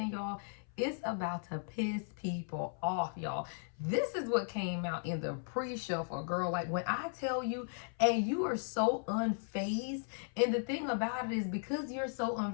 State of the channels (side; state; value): right; silent; 53 dB below the other